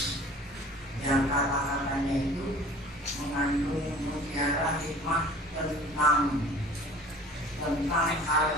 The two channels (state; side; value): normal; both; correlation 0.45